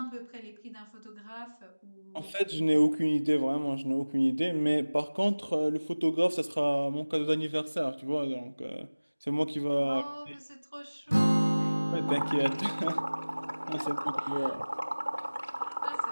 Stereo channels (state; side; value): inverted; both; correlation -1.00